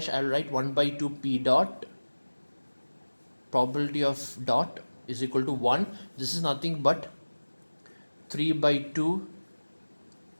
I'll write 1 by 2 p dot, probability of dot is equal to 1. This is nothing but 3 by 2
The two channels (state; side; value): inverted; both; correlation -1.00